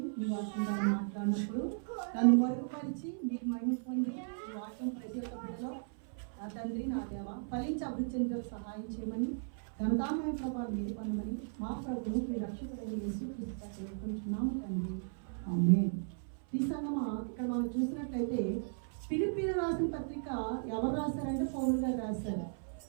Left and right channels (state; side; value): silent; left; 54 dB below the other